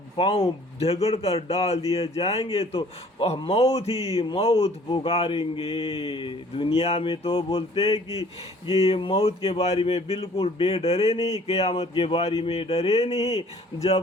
پاؤں جھگڑ کر ڈال دیے جائیں گے تو وہ موت ہی موت پکاریں گے۔ دنیا میں تو بولتے ہیں کہ یہ موت کے بارے میں بالکل بے ڈرے نہیں، قیامت کے بارے میں ڈرے نہیں۔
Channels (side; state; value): both; normal; correlation 0.54